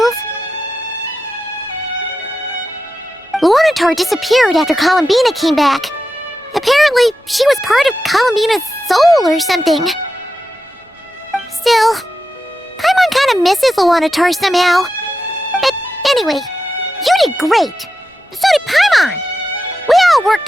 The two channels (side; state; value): both; normal; correlation 0.89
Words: Luanatar disappeared after Columbina came back. Apparently, she was part of Columbina's soul or something. Still, Paimon kind of misses Luanatar somehow. But anyway, you did great. So did Paimon. We all